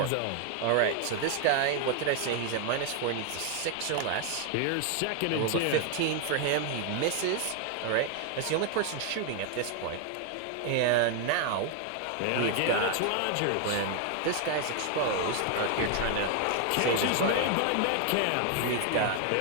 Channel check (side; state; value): both; different; correlation 0.00